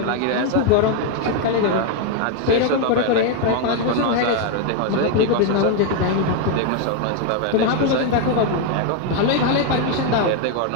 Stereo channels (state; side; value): different; both; correlation 0.01